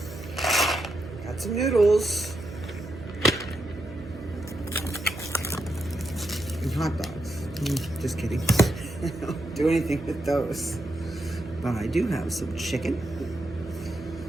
got some noodles, and hot dogs. Just kidding. I don't do anything with those. But I do have some chicken.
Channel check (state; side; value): noise; right; hum, 14 dB below the sound